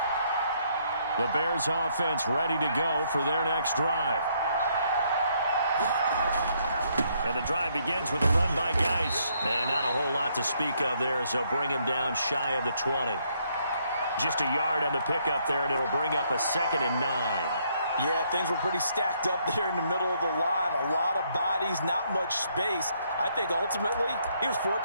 The Bears offense ready to go for their next drive. And the drive begins with a run by Geis. And not a whole lot to speak of there as they'll bring him down shy of the 20. Just a yard on the pickup there, and it'll bring up a 2nd and 9. Yeah, things were pretty stacked up there in the middle of the line. A lot of bodies, not much space. I think ultimately he was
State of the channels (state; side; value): inverted; both; correlation -0.71